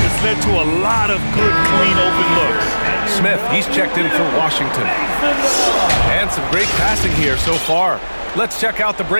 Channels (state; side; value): inverted; both; correlation -1.00